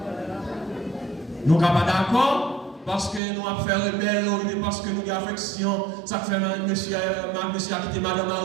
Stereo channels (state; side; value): drops out; left; at 3.2 s